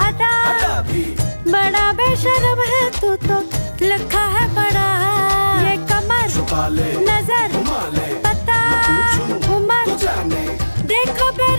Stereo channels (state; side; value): inverted; both; correlation -1.00